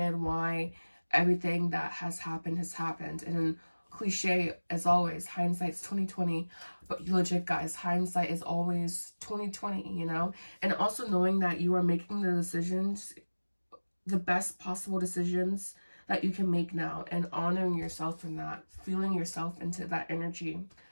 why everything that has happened. And cliche as always, hindsight's 2020, but legit, guys, hindsight is always 2020, you know. And also knowing that you are making the decisions, the best possible decisions that you can make now, and honoring yourself in that, feeling yourself into that energy,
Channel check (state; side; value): inverted; both; correlation -1.00